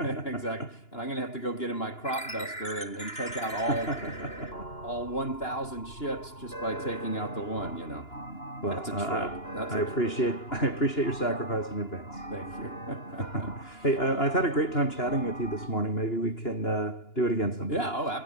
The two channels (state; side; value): late; right; 2.9 ms